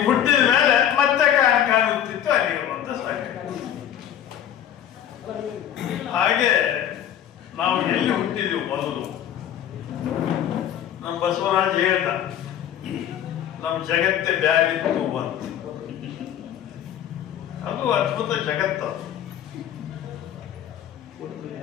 ಹುಟ್ಟಿದ ಮೇಲೆ ಮತ್ತೆ ಕಾಣುತ್ತಿತ್ತು ಅಲ್ಲಿಗೆ ಒಂದು ಸಾಕಯ್ಯೋ. ಹಾಗೆ ನಾವು ಎಲ್ಲಿ ಹುಟ್ಟಿದೆವು ಮೊದಲು? ನಮ್ಮ ಬಸವರಾಜ್ ಹೇಳ್ದ, ನಮ್ಮ ಜಗತ್ತೇ ಬ್ಯಾರಿತ್ತು ಅಂತ. ಅದು ಅದ್ಭುತ ಜಗತ್ತು.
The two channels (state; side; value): quieter; right; 10.3 dB